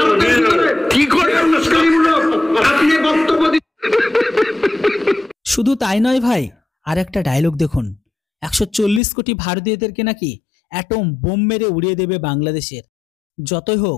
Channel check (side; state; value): right; drops out; at 9.0 s